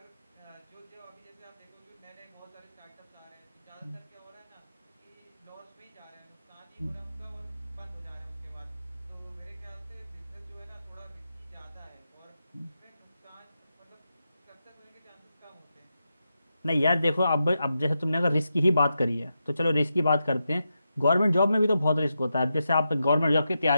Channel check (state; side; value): inverted; both; correlation -0.87